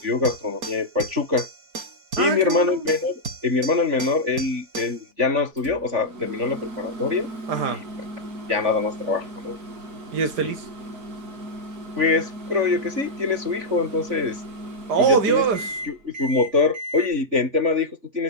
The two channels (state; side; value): late; left; 4.3 ms